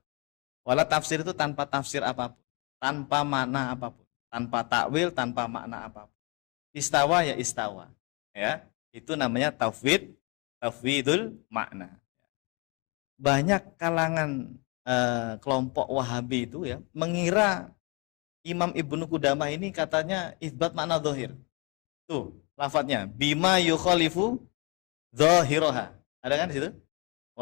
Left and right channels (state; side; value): quieter; right; 31.2 dB